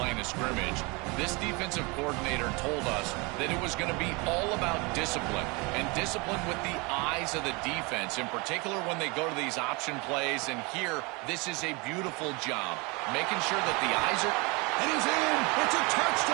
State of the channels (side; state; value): left; quieter; 27.8 dB